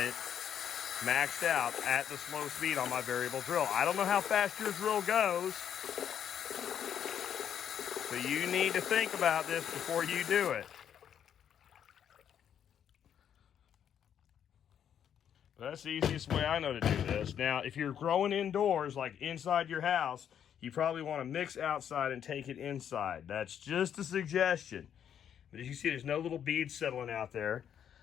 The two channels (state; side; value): quieter; right; 9.0 dB